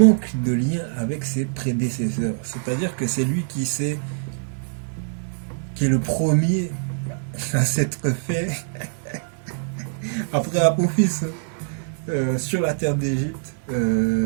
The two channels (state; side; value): silent; left; digital silence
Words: de lien avec ses prédécesseurs. C'est-à-dire que c'est lui qui est le premier à s'être fait après Apophis sur la terre d'Égypte.